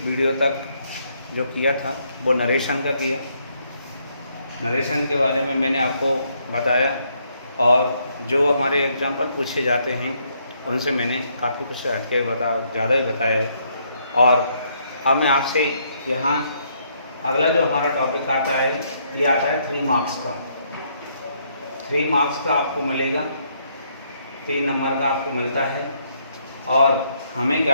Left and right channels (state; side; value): inverted; both; correlation -0.72